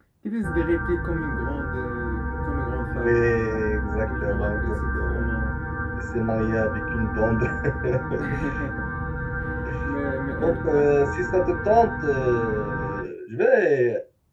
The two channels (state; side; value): identical; both; correlation 1.00